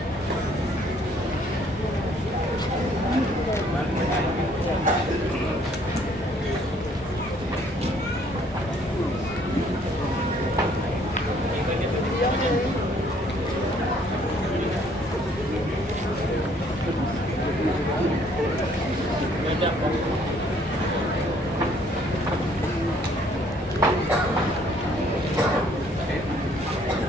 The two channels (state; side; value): normal; both; correlation 0.62